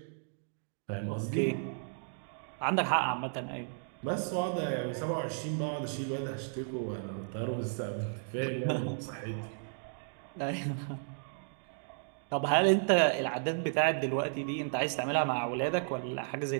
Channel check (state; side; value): silent; left; digital silence